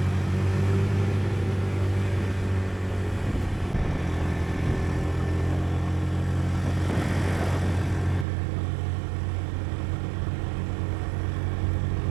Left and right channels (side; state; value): left; drops out; at 8.2 s